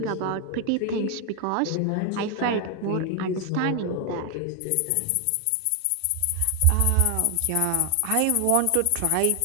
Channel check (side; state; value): both; different; correlation 0.01